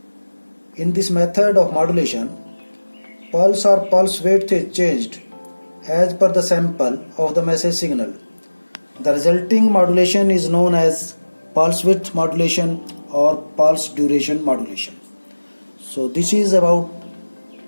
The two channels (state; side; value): inverted; both; correlation -1.00